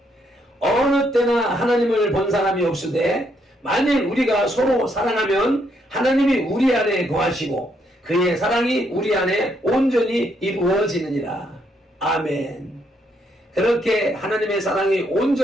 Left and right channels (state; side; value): normal; both; correlation 0.74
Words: 어느 때나 하나님을 본 사람이 없으되 만일 우리가 서로 사랑하면 하나님이 우리 안에 거하시고 그의 사랑이 우리 안에 온전히 이루어지느니라. 아멘. 그렇게 하나님의 사랑이